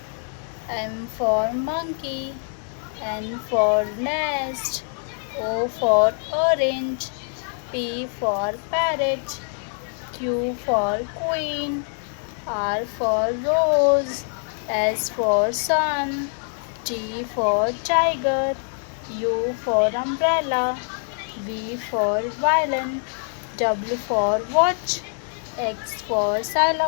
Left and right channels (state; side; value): silent; right; 62 dB below the other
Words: M for monkey, N for nest, O for orange, P for parrot, Q for queen, R for rose, S for sun, T for tiger, U for umbrella, V for violin, W for watch, X for